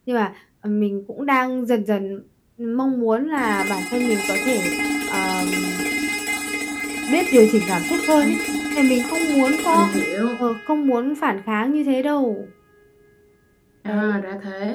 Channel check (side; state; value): both; identical; correlation 1.00